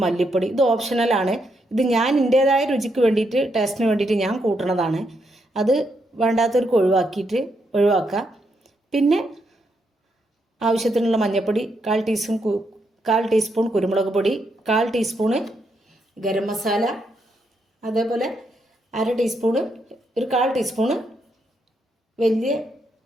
മല്ലിപ്പൊടി. ഇത് ഓപ്ഷണലാണ്. ഇത് ഞാൻ എൻ്റേതായ രുചിക്ക് വേണ്ടിയിട്ട്, ടേസ്റ്റിന് വേണ്ടിയിട്ട് ഞാൻ കൂട്ടണതാണ്. അത് വേണ്ടാത്തവർക്ക് ഒഴിവാക്കുക. പിന്നെ ആവശ്യത്തിനുള്ള മഞ്ഞൾപ്പൊടി, 1/4 ടീസ്പൂൺ കുരുമുളക് പൊടി, 1/4 ടീസ്പൂണ് ഗരം മസാല, അതേപോലെ 1/2 ടീസ്പൂണ്, ഒരു 1/4 ടീസ്പൂണ് വലിയ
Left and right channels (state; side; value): normal; both; correlation 0.79